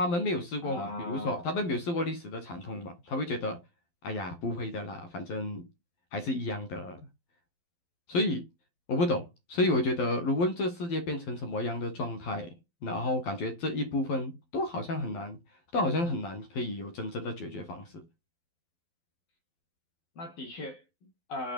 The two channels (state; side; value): late; right; 12 ms